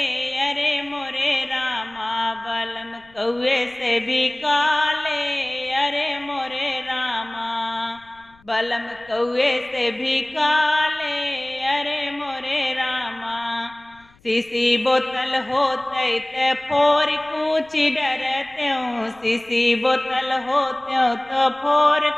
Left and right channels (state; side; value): noise; left; rumble, 30 dB below the sound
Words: अरे मोरे रामा बलम कौए से भी काले। अरे मोरे रामा बलम कौए से भी काले। अरे मोरे रामा सीसी बोतल होते ते फोर कूच डरत्यों। सीसी बोतल होत्यों तो फोर